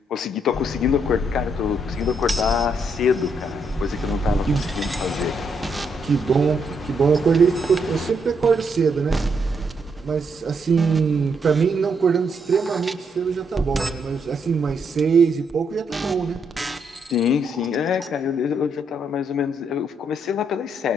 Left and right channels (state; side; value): normal; both; correlation 0.76